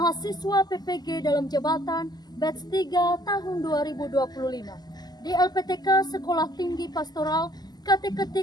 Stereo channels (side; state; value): right; late; 0.20 ms